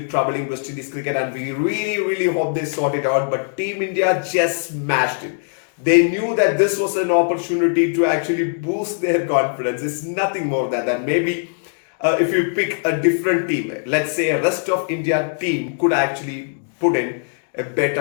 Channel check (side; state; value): right; silent; digital silence